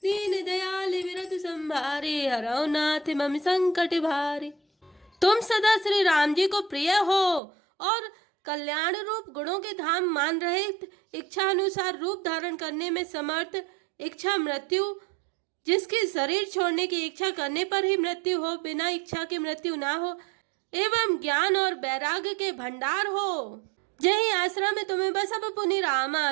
दीन दयाल विरत संभारे, हरौ नाथ मम संकट भारे। तुम सदा श्री राम जी को प्रिय हो और कल्याण रूप गुणों के धाम मान रहे, इच्छा अनुसार रूप धारण करने में समर्थ, इच्छा मृत्यु, जिसकी शरीर छोड़ने की इच्छा करने पर ही मृत्यु हो, बिना इच्छा की मृत्यु ना हो, एवं ज्ञान और वैराग्य के भंडार हो। जही आश्रम में तुम्हें बसब पुनि रामा,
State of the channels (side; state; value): left; drops out; at 7.4 s